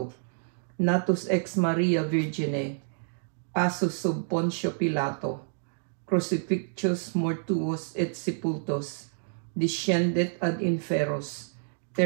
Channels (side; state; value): left; silent; digital silence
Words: natus ex Maria Virgine, passus sub Pontio Pilato, crucifixus mortuos et sepultus, descendet ad inferos,